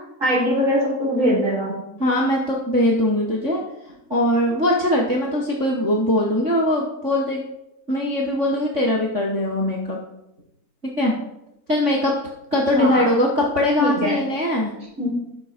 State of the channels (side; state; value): left; late; 3.6 ms